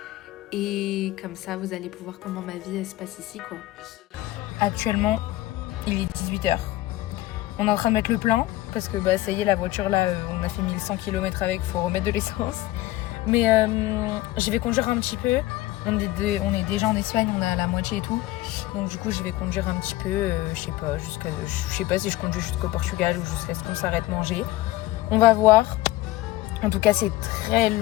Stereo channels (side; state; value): right; quieter; 16.9 dB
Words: Et comme ça, vous allez pouvoir comment ma vie elle se passe ici quoi. Actuellement, il est 18h. On est en train de mettre le plein parce que bah, ça y est, la voiture là, on a fait 1100 km avec, faut remettre de l'essence. Mais je vais conduire un petit peu. On est déjà en Espagne, on a la moitié et tout. Donc du coup, je vais conduire un petit peu, je sais pas si je conduis jusqu'au Portugal ou jusqu'à ce qu'on s'arrête manger. On va voir. En tout cas, c'est très